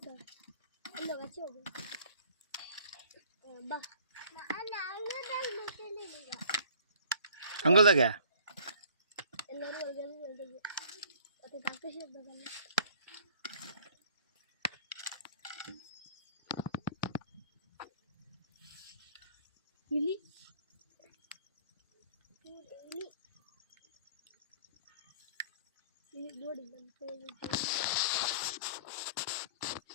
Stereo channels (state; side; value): inverted; both; correlation -0.52